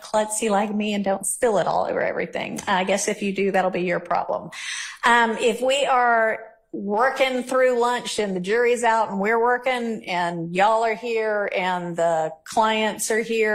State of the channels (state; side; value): identical; both; correlation 1.00